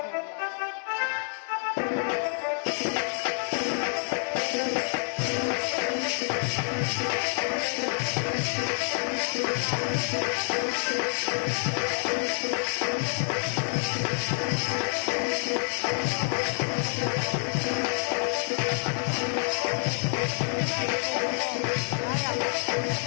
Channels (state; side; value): silent; right; 59 dB below the other